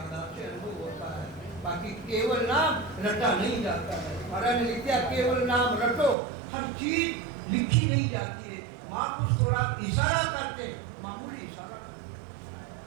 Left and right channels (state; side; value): drops out; left; at 6.2 s